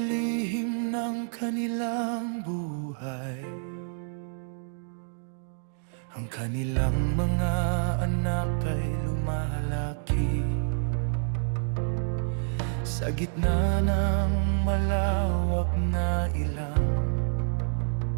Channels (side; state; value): left; silent; digital silence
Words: ng kanilang buhay? Ang kanilang mga anak ay lumalaki sa gitna ng malawak na ilang,